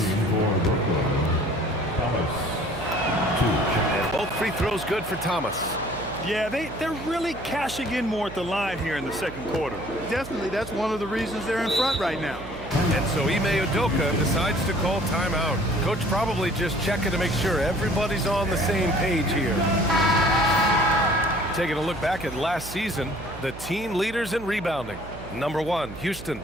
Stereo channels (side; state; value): right; noise; hum, 14 dB below the sound